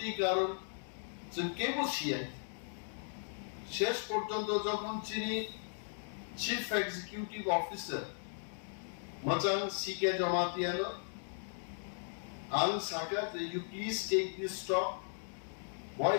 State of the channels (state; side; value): silent; right; digital silence